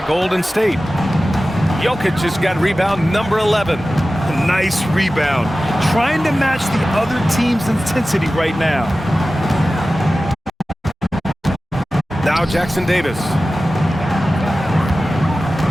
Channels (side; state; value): both; normal; correlation 0.95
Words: Golden State. Jokic has got rebound number 11. Nice rebound. Trying to match the other team's intensity right now. Now Jackson Davis.